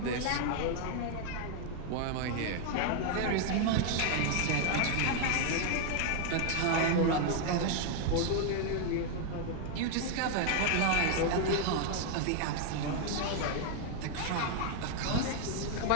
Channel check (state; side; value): different; both; correlation 0.00